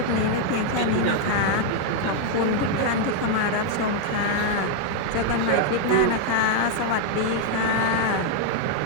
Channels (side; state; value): both; different; correlation 0.00